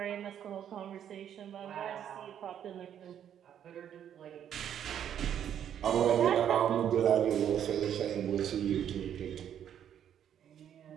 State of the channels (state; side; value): quieter; left; 9.6 dB